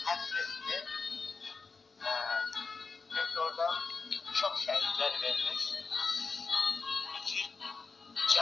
həsr etdim. Çünki orada çox şəhidlər vermiş. İki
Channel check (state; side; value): quieter; right; 4.6 dB